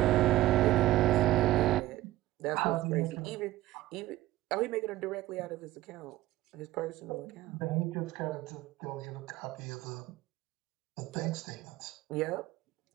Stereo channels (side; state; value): left; quieter; 16.0 dB